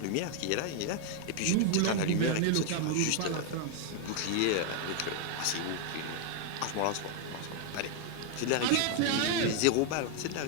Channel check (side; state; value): both; different; correlation 0.00